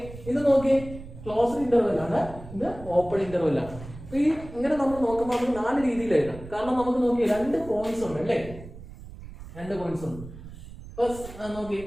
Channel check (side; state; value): right; noise; rumble, 15 dB below the sound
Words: ഇത് നോക്കി ക്ലോസ്ഡ് ഇന്റർവെൽ ആണ്, ഇത് ഓപ്പൺ ഇന്റർവെൽ ആണ്. ഈ ഇങ്ങനെ നമ്മൾ നോക്കുമ്പോൾ നമുക്ക് 4 രീതിയിൽ എഴുതാം. കാരണം നമുക്ക് നോക്കി 2 പോയിന്റ്സ് ഉണ്ട് അല്ലേ? 2 പോയിന്റ്സ് ഉണ്ട്. ഫസ്റ്റ് നോക്കി